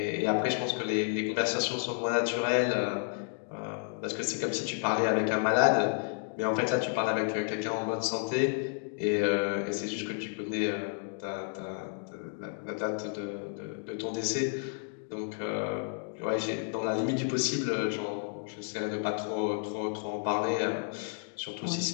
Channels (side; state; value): right; silent; 57 dB below the other